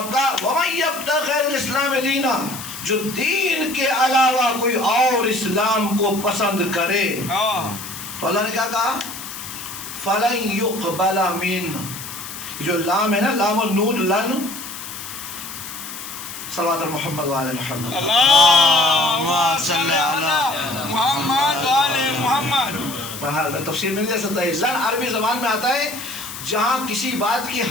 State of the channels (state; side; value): noise; left; hiss, 10 dB below the sound